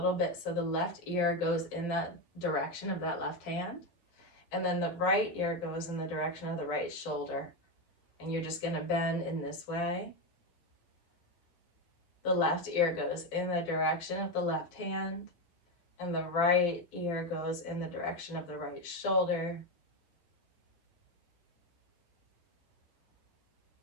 bit so the left ear goes in that direction of that left hand. And then the right ear goes in the direction of the right shoulder. And you're just going to bend in this way. The left ear goes in the direction of the left hand. And the right ear goes in the direction of the right shoulder.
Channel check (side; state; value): right; late; 12 ms